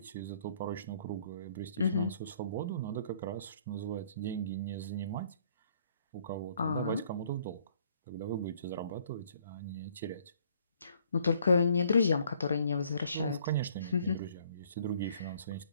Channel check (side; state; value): both; inverted; correlation -0.62